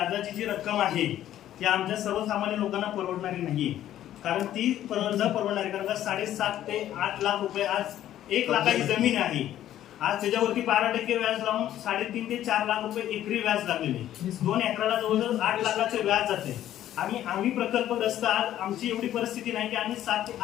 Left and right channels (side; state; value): right; quieter; 12.2 dB